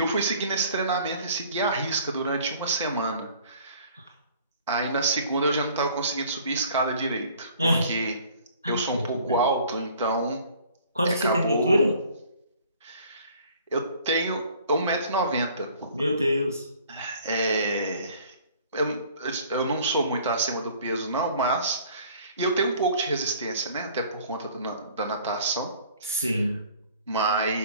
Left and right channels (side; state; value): both; inverted; correlation -0.53